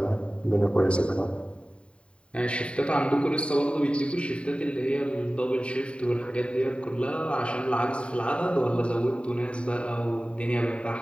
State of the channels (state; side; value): late; right; 0.058 ms